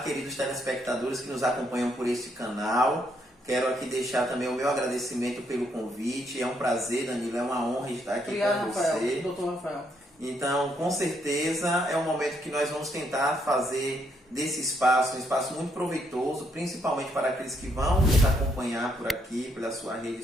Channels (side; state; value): both; normal; correlation 0.74